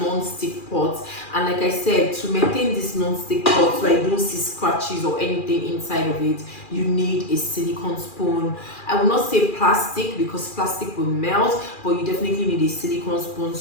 pots, and like I said, to maintain this non-stick pot so I don't see scratches or anything inside of it, you need a silicone spoon. I will not say plastic, because plastic will melt, but you definitely need a silicone spoon,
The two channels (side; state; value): right; late; 2.4 ms